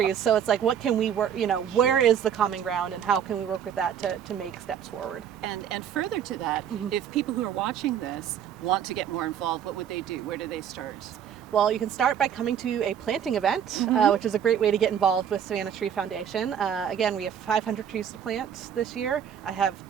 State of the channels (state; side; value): quieter; left; 8.8 dB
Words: So it's like, what can we work, you know, where is the common ground, and how can we work with that to make steps forward? And further to that, if people who are watching this want to get more involved, what would they do? Where do they start? Well, you can start by coming to a planting event, which is a great way to get involved with Savannah Tree Foundation. Again, we have 500 trees to plant this year. I have